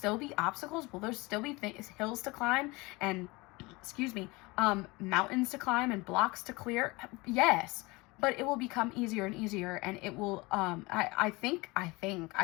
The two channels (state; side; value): quieter; right; 24.0 dB